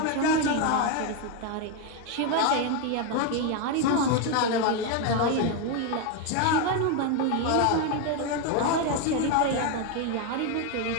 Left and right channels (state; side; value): different; both; correlation 0.02